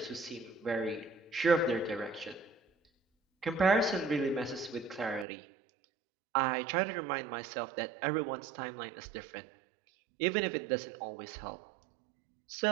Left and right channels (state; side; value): drops out; left; at 5.2 s